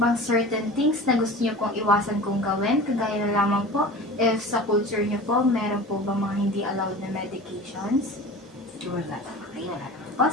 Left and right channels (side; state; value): both; normal; correlation 0.37